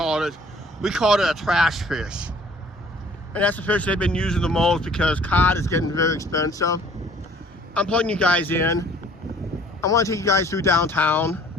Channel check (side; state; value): both; normal; correlation 0.55